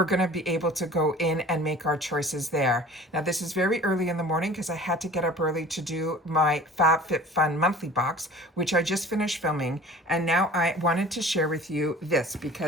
going to be able to go in and make our choices there. Now, this is very early in the morning because I had to get up early to do my FabFitFun monthly box, which I just finished filming. And now I wanted to share with you this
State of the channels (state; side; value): normal; both; correlation 0.44